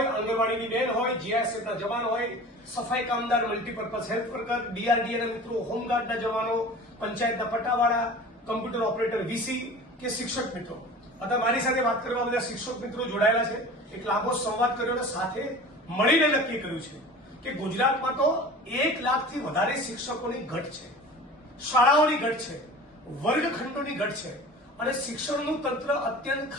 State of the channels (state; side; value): normal; both; correlation 0.39